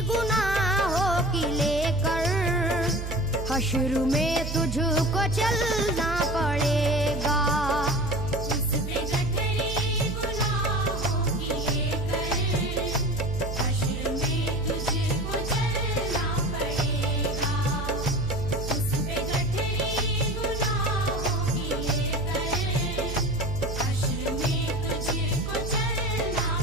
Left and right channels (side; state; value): right; noise; hum, 5 dB below the sound